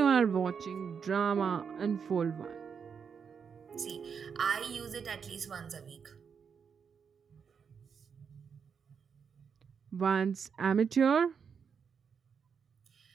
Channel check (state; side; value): quieter; left; 6.5 dB